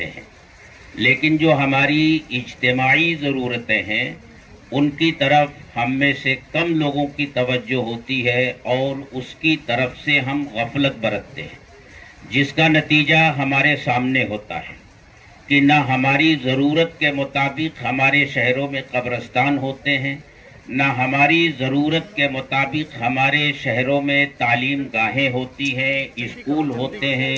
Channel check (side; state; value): both; identical; correlation 1.00